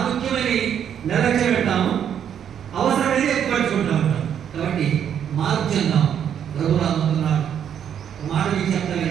నిర్లక్ష్యం పెట్టాము, అవసరమైతే ఎక్కువ పట్టుకుంటా ఉంటాం. కాబట్టి మార్పు చెందాం. ప్రభు రాబోతున్నాడు. మాట మీకు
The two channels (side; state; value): left; quieter; 8.9 dB